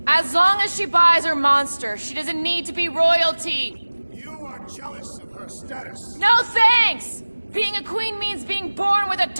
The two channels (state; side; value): inverted; both; correlation -1.00